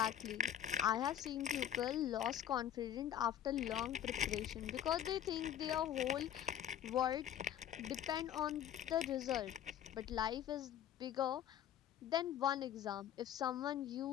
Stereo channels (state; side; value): quieter; right; 10.4 dB